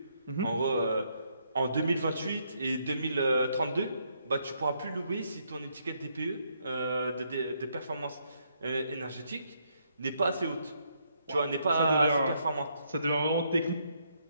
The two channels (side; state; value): both; inverted; correlation -0.74